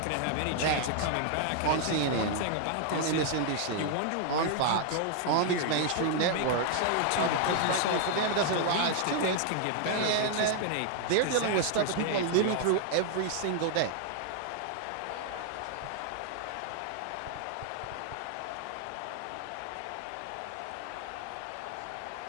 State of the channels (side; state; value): both; different; correlation 0.00